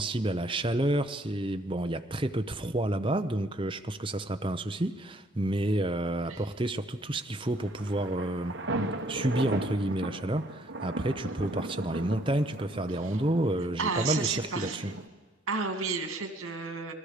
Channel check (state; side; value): normal; both; correlation 0.64